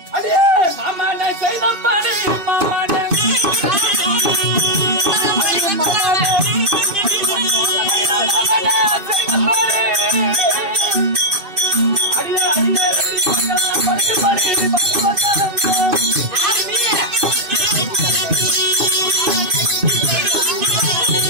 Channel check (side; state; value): left; late; 2.6 ms